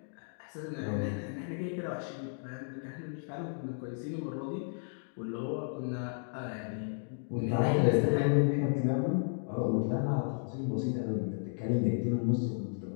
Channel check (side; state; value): right; silent; digital silence